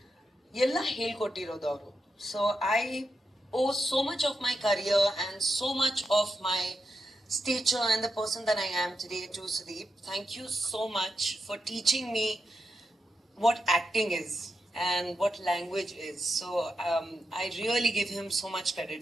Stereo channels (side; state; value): both; normal; correlation 0.86